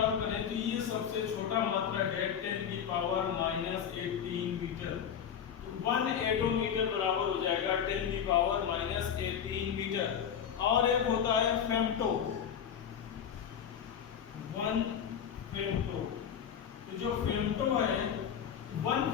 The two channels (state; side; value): quieter; right; 8.3 dB